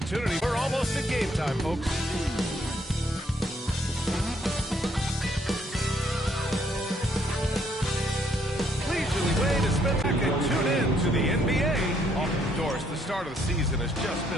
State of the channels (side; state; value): both; normal; correlation 0.69